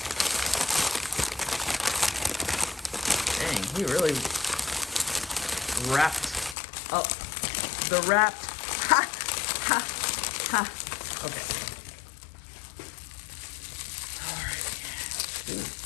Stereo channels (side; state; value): right; drops out; at 6.6 s